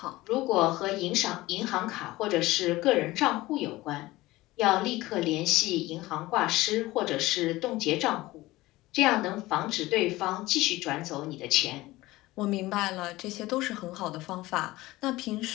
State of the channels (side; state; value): right; quieter; 18.7 dB